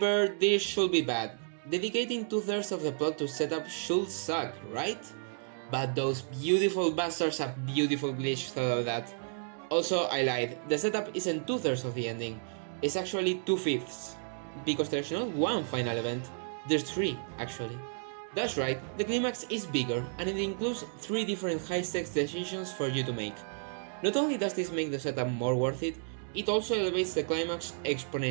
this should be bad. Dedicating 2/3 of the plot to setup should suck, right? But those beautiful bastards have beautiful glitch thought of that. Also, I lied, the setup isn't 2/3 of the ending, it's actually 2/5. Because there's not one final event, there's 3 actually. That's right, the climax is bigger and it includes 3 different high-stakes decisions for you to make. Not only does this make the setup more worth it, it also elevates the climax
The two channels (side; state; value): left; silent; digital silence